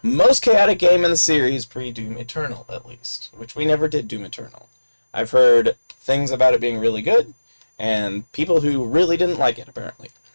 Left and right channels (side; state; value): both; inverted; correlation -1.00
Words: most chaotic game in the series, pre-Doom Eternal, at least. Which we never did Doom Eternal. I've heard things about it being really good, and people who really didn't like it, apparently.